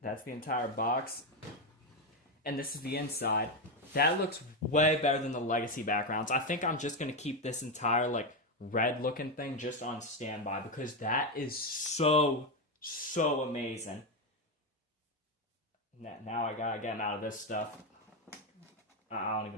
entire box. And this is the inside. That looks way better than the legacy backgrounds. I think I'm just going to keep this entire, red looking thing just on standby, because that is so amazing. Now I gotta get him out of this stuff. I don't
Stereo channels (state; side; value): normal; both; correlation 0.09